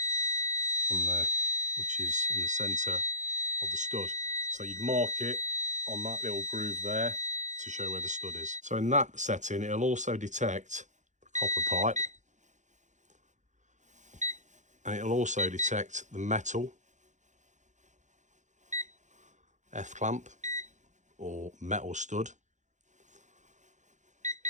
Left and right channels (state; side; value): late; left; 0.35 ms